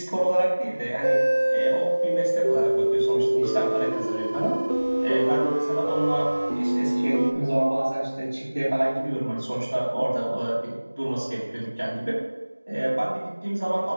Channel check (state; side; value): inverted; both; correlation -1.00